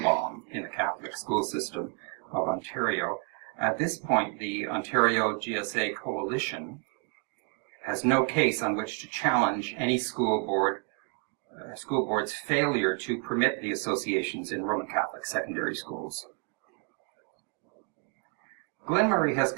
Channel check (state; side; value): quieter; left; 37.6 dB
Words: bomb in the Catholic school system of Ontario. At this point, the Ontario GSA Coalition has no case on which to challenge any school board's failure to permit the associations in Roman Catholic secondary schools. Glenn Murray has